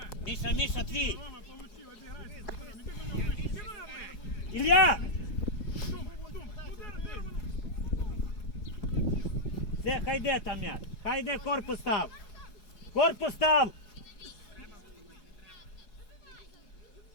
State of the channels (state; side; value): late; right; 4.8 ms